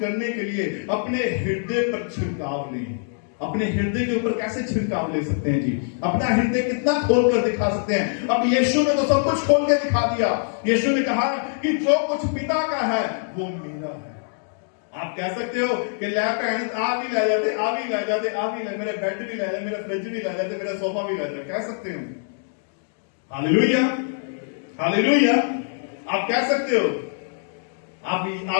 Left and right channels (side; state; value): right; silent; digital silence